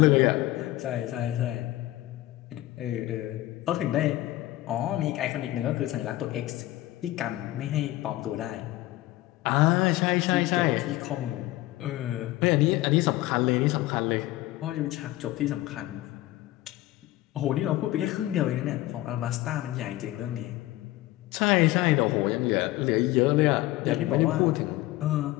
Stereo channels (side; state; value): right; quieter; 16.8 dB